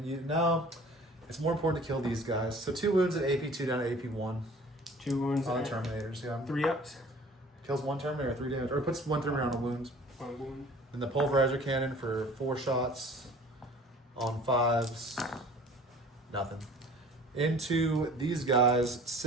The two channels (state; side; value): normal; both; correlation 0.48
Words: now it's more important to kill these guys. So 2 wounds at AP2 down to AP1. 2 wounds on Terminators, yeah. 3 ups. Kills 1 Terminator, 3 damage, or puts 1 Terminator on a wound. 1 wound. And the pulverizer cannon for 4 shots on 5s, nothing. Into these guys,